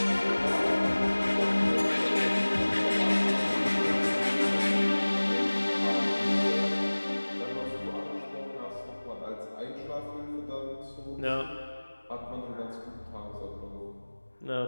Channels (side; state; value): both; inverted; correlation -1.00